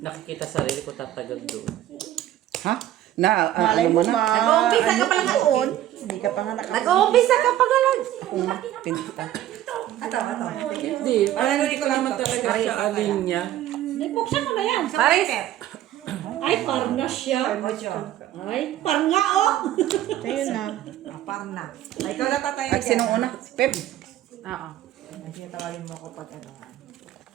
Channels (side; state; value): left; quieter; 12.9 dB